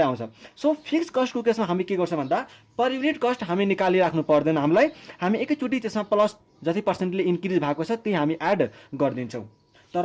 आउँछ। सो फिक्स कस्टको केसमा हामी के गर्छौँ भन्दा पर युनिट कस्ट हामी निकालिराख्नु पर्दैन हामीलाई, हामी एकैचोटि त्यसमा प्लस जति पर्सेन्टले इन्क्रिज भएको छ त्यही हामी एड गरिदिन्छौँ।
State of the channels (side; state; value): both; identical; correlation 1.00